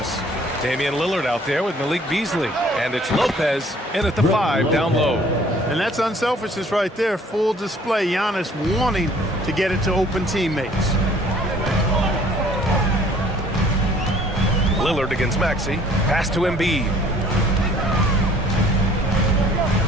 Damian Lillard out there with Malik Beasley. And it's Lopez in at the 5 down low. And that's unselfishness right there. Full display. Giannis wanting to get it to open teammates. Lillard against Maxey. Pass to Embiid.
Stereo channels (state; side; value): normal; both; correlation 0.56